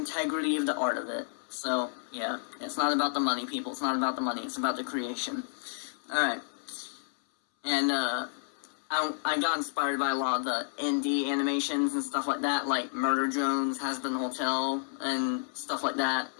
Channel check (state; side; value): silent; right; 57 dB below the other